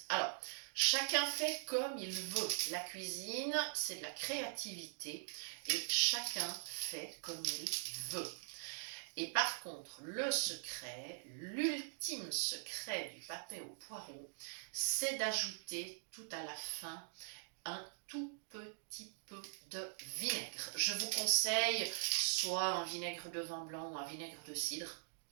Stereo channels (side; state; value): left; silent; digital silence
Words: Alors, chacun fait comme il veut. La cuisine, c'est de la créativité, et chacun fait comme il veut. Et par contre, le secret, l'ultime secret du papé au poireau, c'est d'ajouter tout à la fin un tout petit peu de vinaigre. Je vous conseille soit un vinaigre de vin blanc ou un vinaigre de cidre,